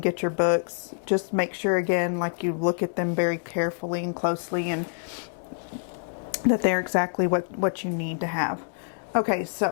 get your books, just make sure, again, like you look at them very carefully and closely, and that they're exactly what you need to have. Okay,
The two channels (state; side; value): silent; right; 60 dB below the other